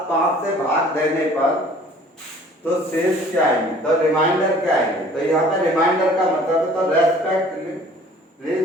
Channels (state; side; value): normal; both; correlation 0.52